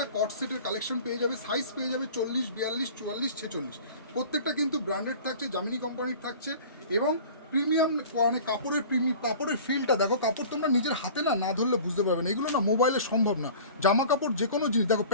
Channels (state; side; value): inverted; both; correlation -0.43